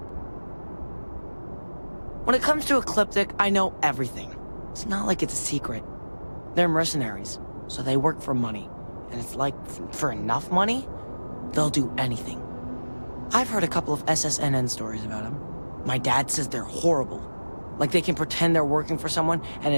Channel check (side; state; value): both; inverted; correlation -1.00